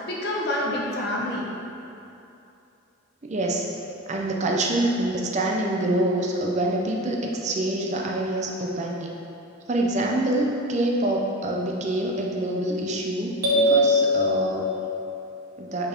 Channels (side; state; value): both; normal; correlation 0.23